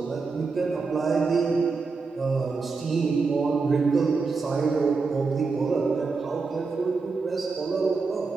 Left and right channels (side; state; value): left; quieter; 4.4 dB